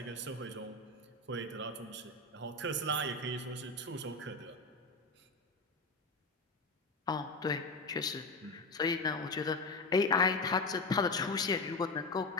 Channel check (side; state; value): right; quieter; 3.2 dB